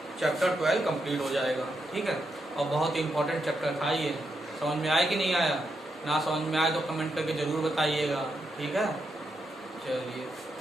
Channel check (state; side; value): normal; both; correlation 0.83